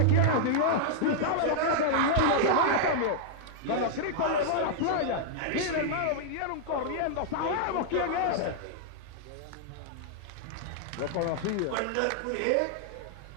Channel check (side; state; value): both; different; correlation -0.01